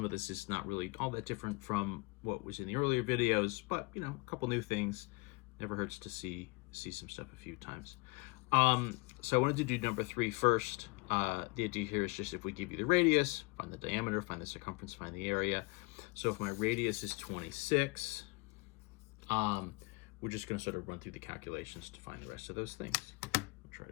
of this is not really all that different from what was in the earlier videos, but you know, a couple new things. Never hurts to see some stuff a few times. So I wanted to do number 3 first. The idea here is just if we give you the radius, find the diameter, find the circumference, find the area. So if my radius is 26, we're just going to sort of run through the calculations to find the rest of those things. I'll try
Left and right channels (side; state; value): right; quieter; 27.0 dB